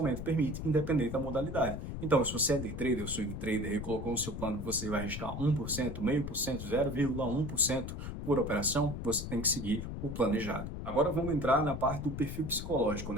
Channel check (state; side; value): noise; left; rumble, 6 dB below the sound